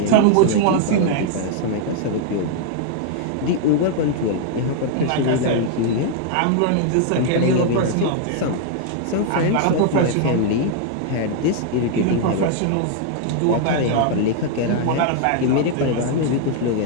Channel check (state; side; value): different; both; correlation 0.00